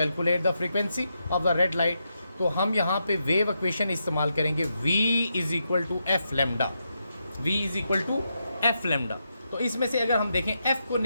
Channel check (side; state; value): both; inverted; correlation -0.84